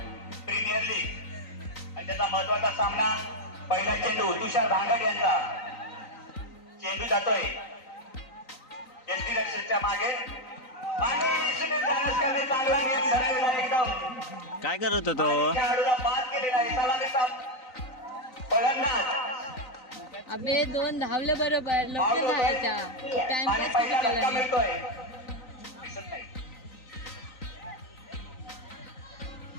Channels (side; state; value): right; late; 3.9 ms